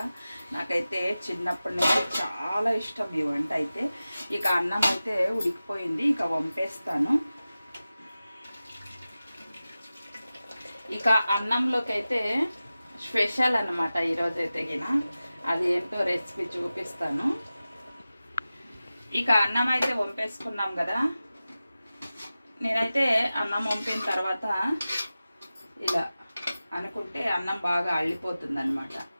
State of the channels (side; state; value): both; inverted; correlation -0.95